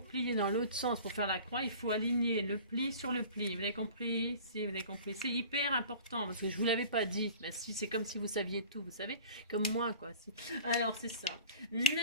repliez dans l'autre sens pour faire la croix, il faut aligner le pli sur le pli. Vous avez compris? Si, vous avez compris. C'est hyper important parce que je vous l'avais pas dit. Ben, si, c'est comme si vous saviez tout, vous savez, comme moi, quoi. Si. Alors, c'est ça.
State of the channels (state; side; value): inverted; both; correlation -0.41